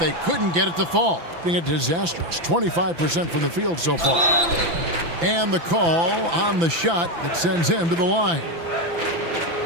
couldn't get it to fall. Being a disastrous 25% from the field so far. And the call on the shot that sends him to the line.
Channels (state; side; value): late; left; 5.9 ms